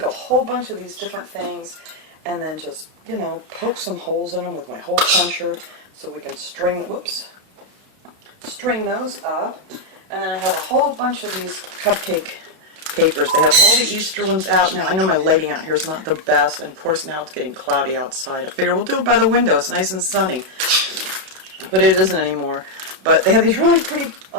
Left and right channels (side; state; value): left; late; 32 ms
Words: a whole bunch of these different things and then just, poke some holes in them with my hole puncher so we can string those up. And then I have a whole bunch of these cupcake papers. They have all the Easter ones out now. I know my lighting out here is not the best, and of course now it's getting cloudy outside. I figure we'll do it by the window. It's nice and sunny. But it isn't anymore. But they have these really pretty